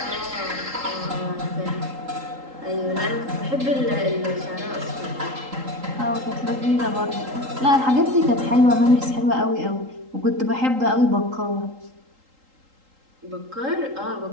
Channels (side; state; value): left; late; 3.8 ms